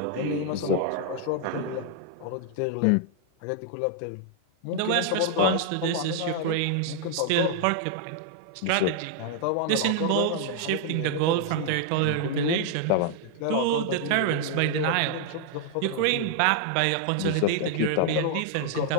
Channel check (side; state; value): both; different; correlation 0.00